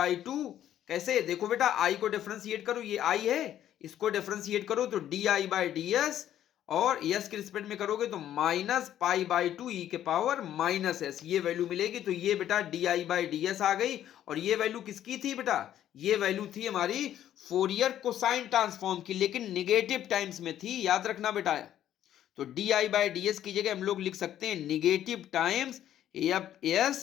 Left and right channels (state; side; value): quieter; right; 11.4 dB